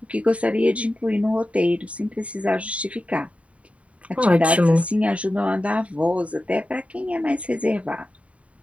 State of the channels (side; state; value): left; late; 0.065 ms